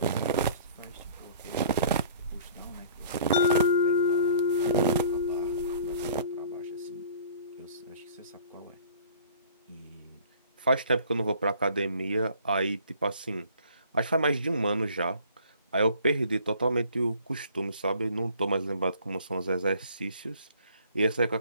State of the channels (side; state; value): both; inverted; correlation -0.52